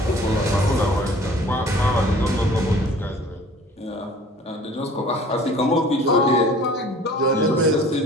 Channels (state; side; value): normal; both; correlation 0.49